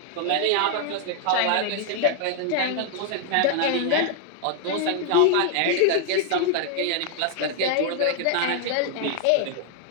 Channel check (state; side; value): different; both; correlation 0.00